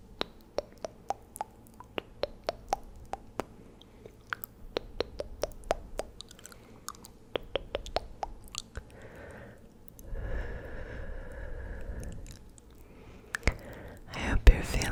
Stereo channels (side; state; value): both; identical; correlation 1.00